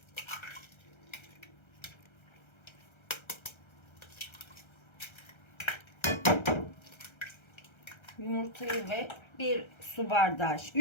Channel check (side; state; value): right; late; 1.3 ms